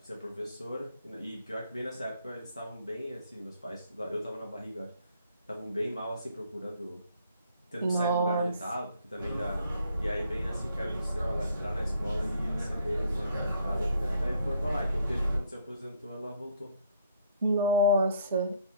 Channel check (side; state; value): both; inverted; correlation -0.64